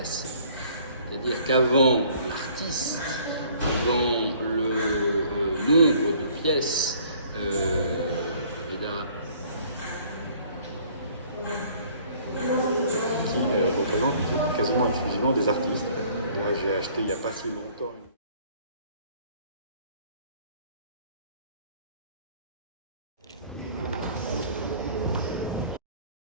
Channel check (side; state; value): both; inverted; correlation -0.56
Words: C'est-à-dire qu'avant l'artiste, avant le nombre de pièces, qui représente quasiment exclusivement des artistes. Là, j'ai acheté il n'y a pas si longtemps.